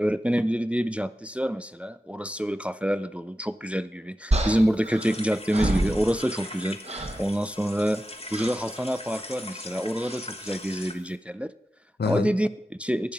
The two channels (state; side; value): normal; both; correlation 0.91